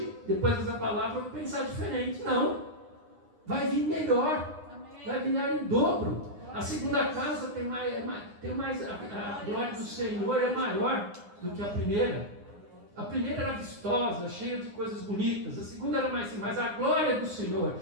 depois dessa palavra, eu vou pensar diferente. Não, vai vir melhor, vai vir em dobro. A segunda casa tem mais a glória do Senhor é maior do que a primeira. A primeira era vistosa, cheia de coisas bonitas. A segunda era mais, mas a glória do Senhor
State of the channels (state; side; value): late; left; 9.8 ms